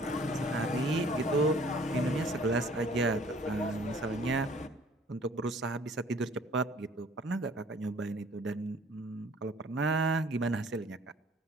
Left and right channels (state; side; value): normal; both; correlation 0.54